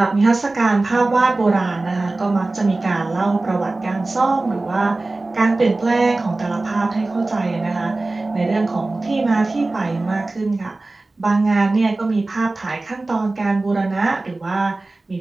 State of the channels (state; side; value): quieter; left; 3.1 dB